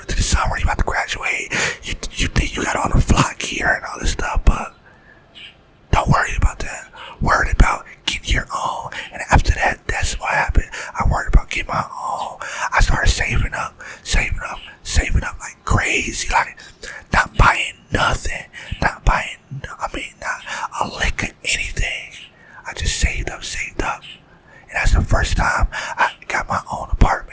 into the summer. You about to graduate. You think you got all the flock gear and all this stuff, but don't worry about that. Worried about getting your own. And after that, that's what happened. I worried about getting my own. I started saving up like crazy. Like, not buying nothing. Not a lick of anything. I just saved up. And that's the first time I got my own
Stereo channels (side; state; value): both; identical; correlation 1.00